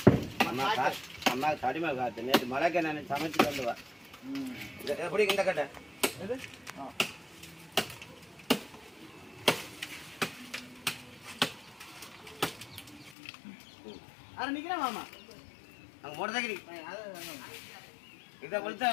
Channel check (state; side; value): drops out; right; at 13.2 s